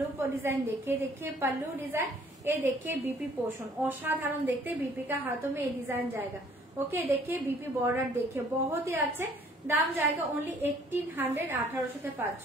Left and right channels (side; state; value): both; normal; correlation 0.59